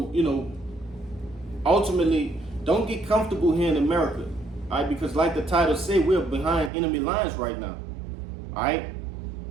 ultimately, don't get comfortable here in America, all right? Because like the title said, we're behind enemy lines right now, all right?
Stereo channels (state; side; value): drops out; left; at 6.7 s